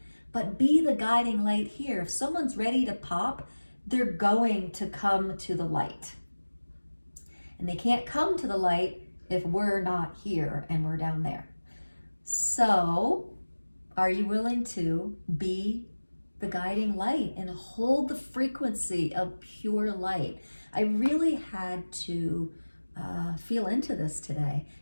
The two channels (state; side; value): inverted; both; correlation -1.00